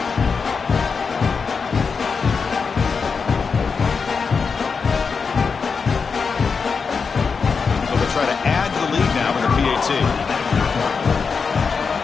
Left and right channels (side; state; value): right; quieter; 5.3 dB